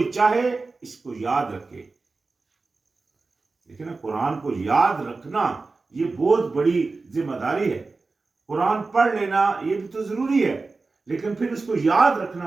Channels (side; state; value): left; quieter; 3.8 dB